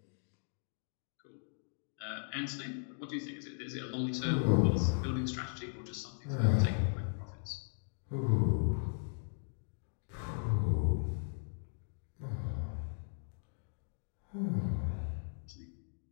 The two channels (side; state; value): right; silent; digital silence